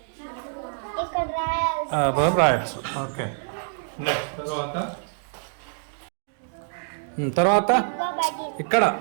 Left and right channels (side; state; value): left; silent; digital silence